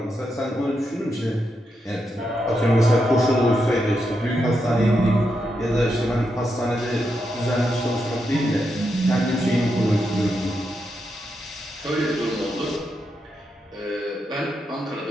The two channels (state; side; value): normal; both; correlation 0.84